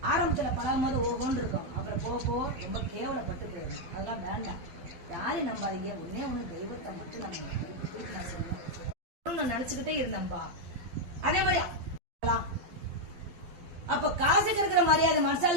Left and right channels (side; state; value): left; late; 12 ms